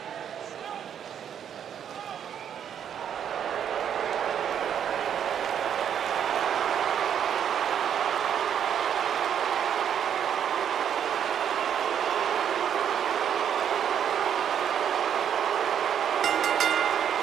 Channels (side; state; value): left; quieter; 8.8 dB